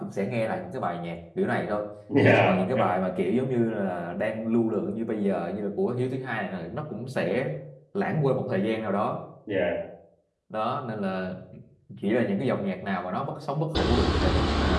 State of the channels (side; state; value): both; identical; correlation 1.00